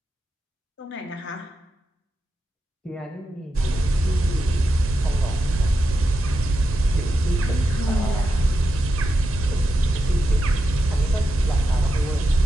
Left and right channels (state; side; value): normal; both; correlation 0.88